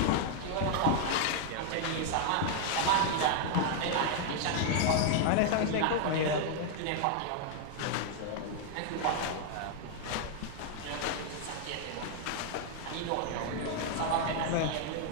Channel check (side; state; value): both; different; correlation 0.00